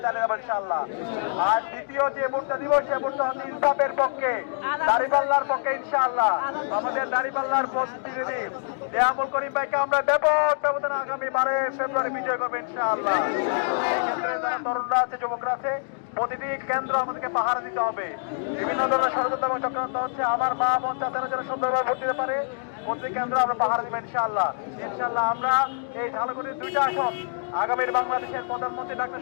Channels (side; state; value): right; silent; digital silence